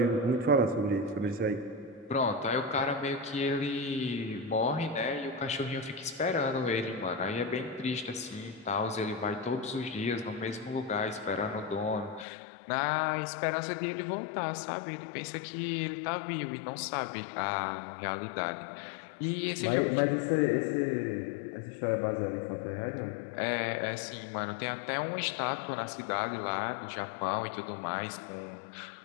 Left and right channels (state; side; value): drops out; right; at 12.2 s